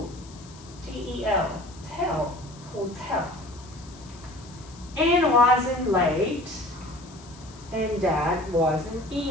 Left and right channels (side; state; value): left; noise; hiss, 22 dB below the sound